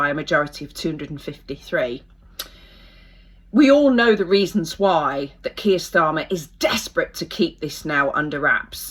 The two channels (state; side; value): identical; both; correlation 1.00